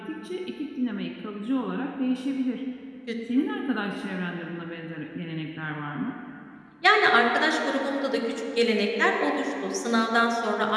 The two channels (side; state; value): both; identical; correlation 1.00